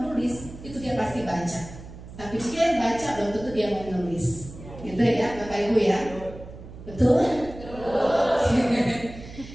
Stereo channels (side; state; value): right; noise; hum, 15 dB below the sound